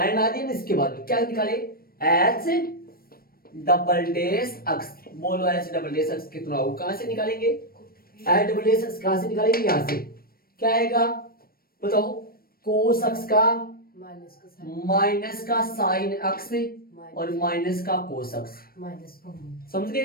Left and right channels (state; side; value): late; right; 0.43 ms